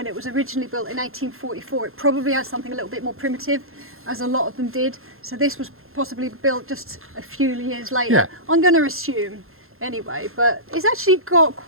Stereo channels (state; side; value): late; left; 0.61 ms